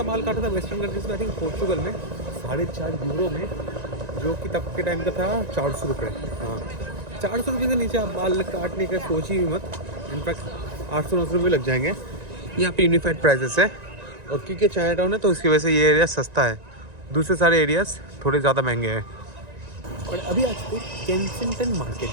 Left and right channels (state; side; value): late; left; 1.9 ms